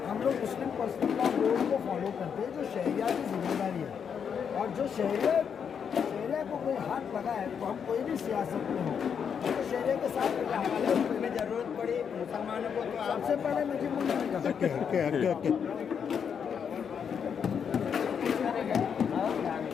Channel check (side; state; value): right; quieter; 7.2 dB